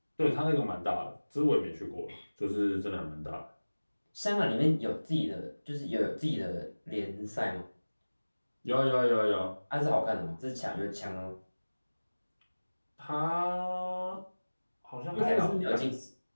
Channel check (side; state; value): both; inverted; correlation -1.00